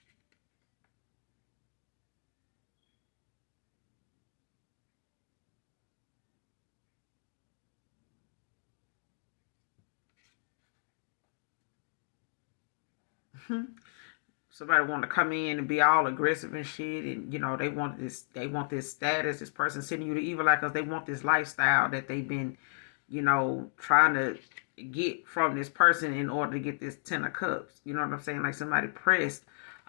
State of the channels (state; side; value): silent; right; digital silence